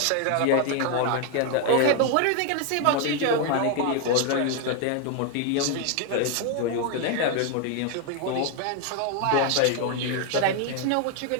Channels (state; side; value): different; both; correlation 0.01